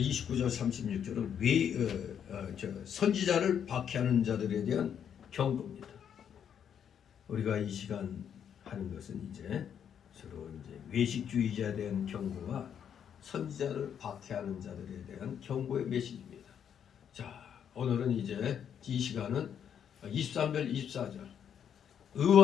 36절은 선지자를 박해하는 자들에 대한 경고입니다. 우리가 이 시간 하는 것은 이제 주로 이제 외식주의자에 대한 경고와 선지자를 박해하는 자들에 대한 경고의 메시지입니다. 자, 오늘은 이제 이 시간은 23절 24절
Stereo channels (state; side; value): quieter; right; 8.5 dB